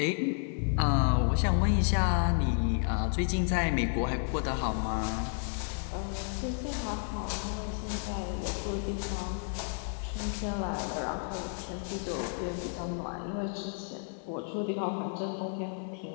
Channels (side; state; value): right; silent; 57 dB below the other